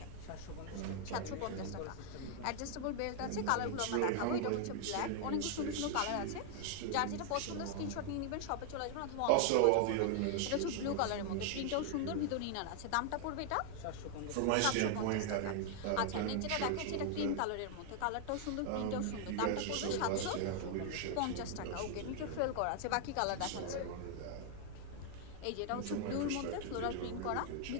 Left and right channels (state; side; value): different; both; correlation 0.00